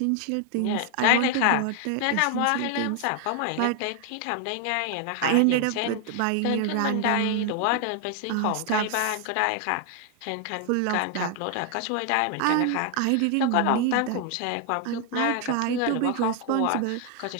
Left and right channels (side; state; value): both; different; correlation 0.00